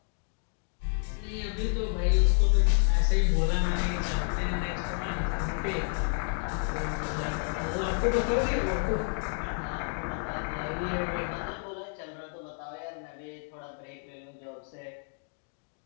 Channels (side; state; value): right; silent; 57 dB below the other